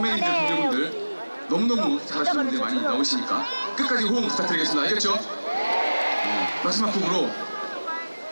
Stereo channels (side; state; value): both; inverted; correlation -1.00